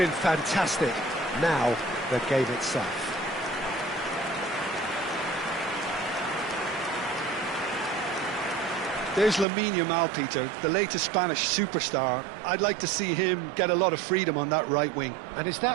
fantastic. Now, the game itself. There's Lamine Yamal, Peter, the latest Spanish superstar. I'd like to see him get a lot of freedom on that right wing. And is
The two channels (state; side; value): drops out; left; at 9.5 s